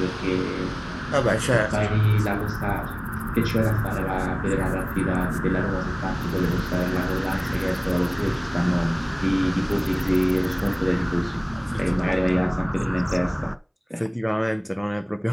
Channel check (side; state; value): both; identical; correlation 1.00